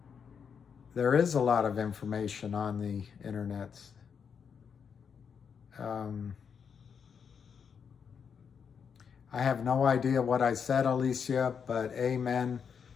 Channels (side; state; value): right; quieter; 6.8 dB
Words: There is a lot of information on the internet. I have no idea what I said, Alicia, but amen,